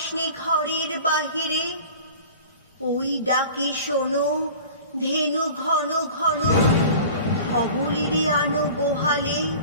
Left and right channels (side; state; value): both; inverted; correlation -0.40